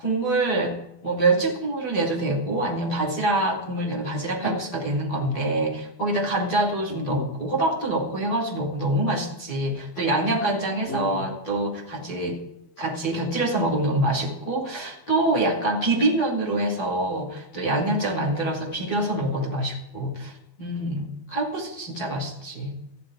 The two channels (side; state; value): right; late; 12 ms